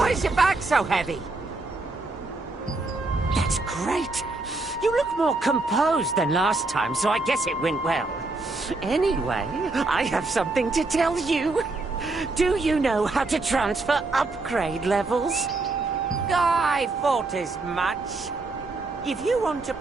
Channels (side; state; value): left; quieter; 3.3 dB